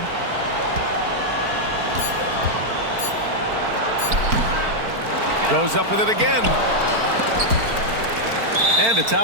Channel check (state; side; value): late; left; 4.4 ms